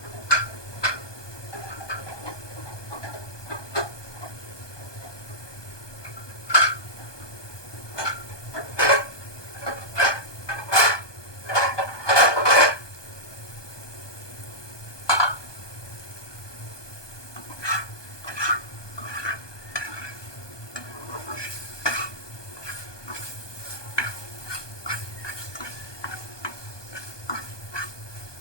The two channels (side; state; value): right; late; 1.2 ms